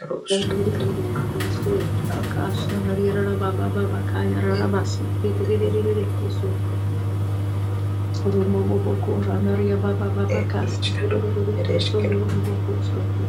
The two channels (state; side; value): identical; both; correlation 1.00